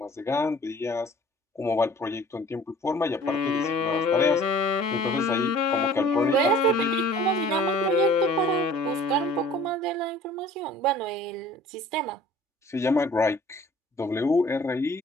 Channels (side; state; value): both; normal; correlation 0.50